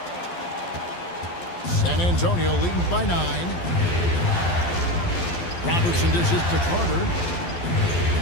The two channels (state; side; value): late; right; 12 ms